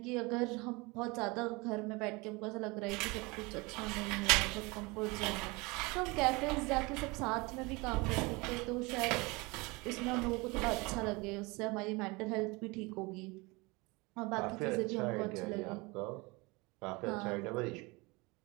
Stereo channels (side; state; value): left; quieter; 25.3 dB